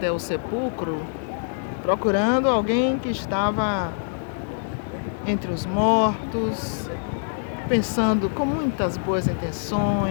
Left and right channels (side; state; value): right; silent; digital silence